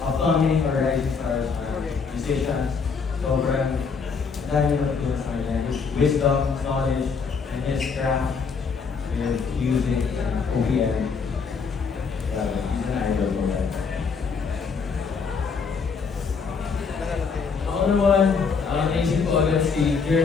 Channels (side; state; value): right; quieter; 5.4 dB